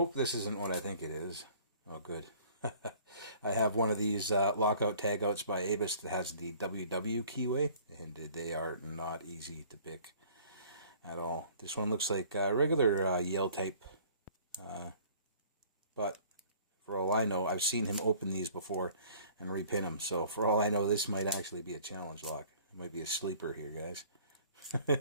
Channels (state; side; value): inverted; both; correlation -0.53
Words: this isn't what I think it is. Oh, good. I have one of these lockout tagouts by Avis that has the WW keyway, and they are not easy to pick at all. This one looks like a regular Yale type, but for all I know, I've seen him open these before and repin them. So for all I know, this might actually be a challenge lock. It might be a sleeper here, guys.